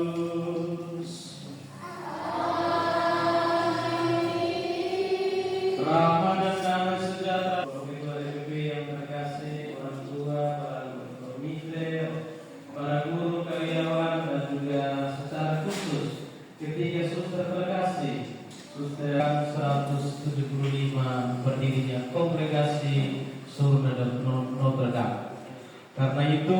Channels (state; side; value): identical; both; correlation 1.00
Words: Rahmat dan damai sejahtera bagi PBB yang terkasih, orang tua, para komite, para guru karyawan, dan juga secara khusus ketiga suster terkasih, suster 175 berdirinya Kongregasi Surga dan Notre Dame. Karena